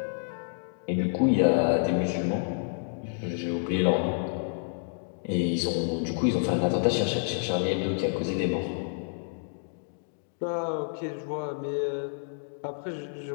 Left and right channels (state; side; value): silent; right; digital silence